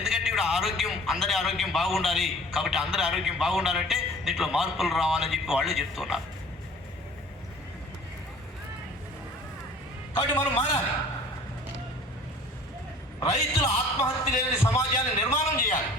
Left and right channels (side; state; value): both; normal; correlation 0.48